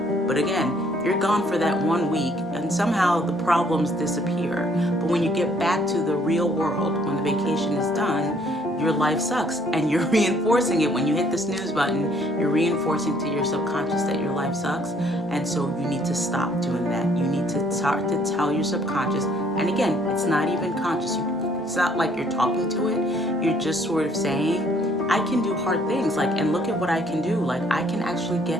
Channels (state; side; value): normal; both; correlation 0.64